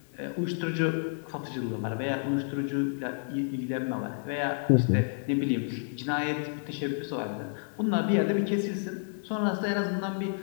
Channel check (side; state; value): right; silent; 58 dB below the other